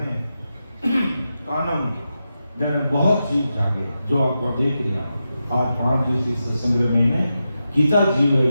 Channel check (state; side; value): inverted; both; correlation -0.89